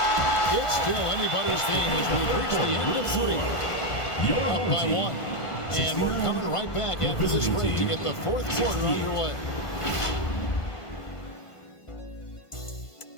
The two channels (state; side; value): late; right; 1.5 ms